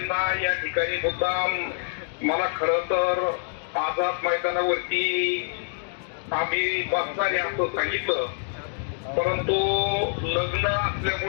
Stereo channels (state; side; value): silent; right; digital silence